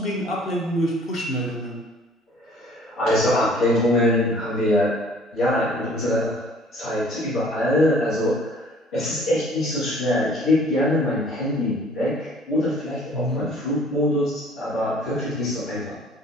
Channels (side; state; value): both; normal; correlation 0.54